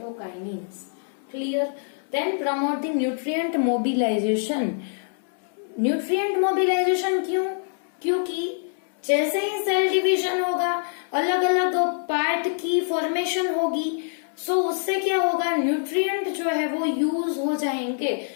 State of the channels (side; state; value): right; silent; 62 dB below the other